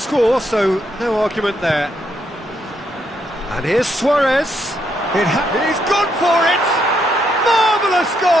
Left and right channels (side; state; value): both; normal; correlation 0.76